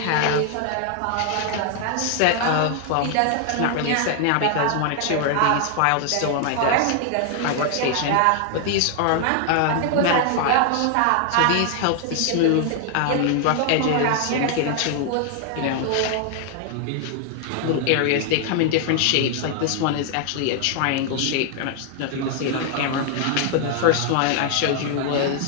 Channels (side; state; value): both; different; correlation 0.00